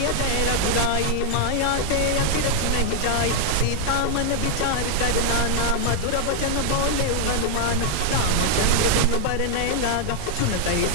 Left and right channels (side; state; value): both; different; correlation 0.00